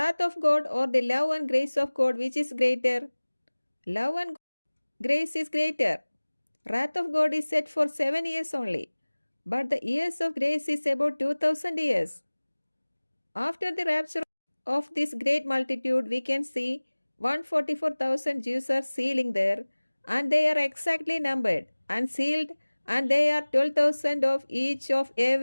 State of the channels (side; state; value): both; inverted; correlation -1.00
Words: of God or the love and grace of God, which is greater? Love and grace is greater. Wrath of God is set for 7 years only, but the years of grace is about 2000 years. After the rapture of this great multitude, we can see 144,000 Jews are sealing there, and they are exactly numbered and sealed, and they are 12,000 of each of